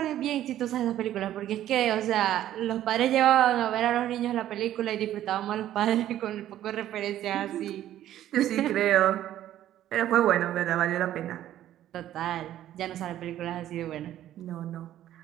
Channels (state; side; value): quieter; left; 12.4 dB